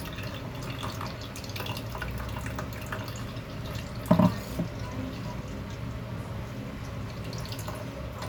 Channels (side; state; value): both; identical; correlation 1.00